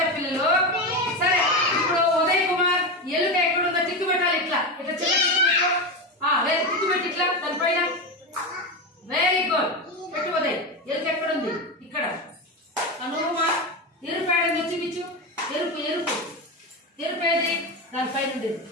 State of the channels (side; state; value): both; normal; correlation 0.17